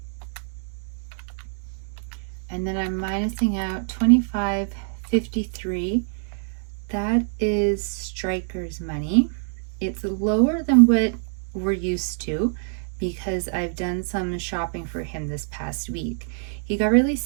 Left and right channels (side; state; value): left; silent; 62 dB below the other